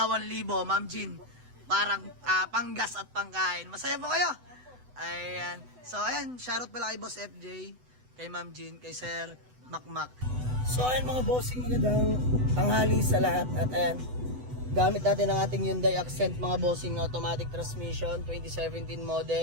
Ma'am Jean. Parang panggas at pangkain. Masaya po kayo? Ayan. So ayan, shoutout pala kay Boss FJ, kay Ma'am Jean, kay Sir Makmak. So ayan mga bossing, magandang tanghali sa lahat. At ayan, gamit natin ang ating Hyundai Accent mga bossing, automatic transmission, 2017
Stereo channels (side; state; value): left; late; 8.0 ms